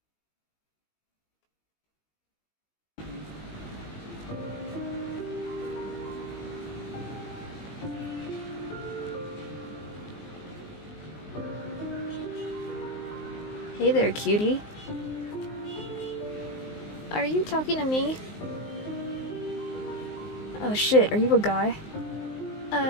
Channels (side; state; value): right; late; 19 ms